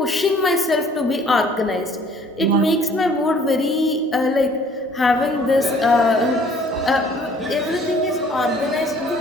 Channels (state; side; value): normal; both; correlation 0.56